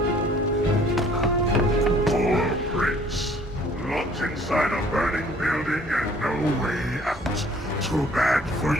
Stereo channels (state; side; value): normal; both; correlation 0.56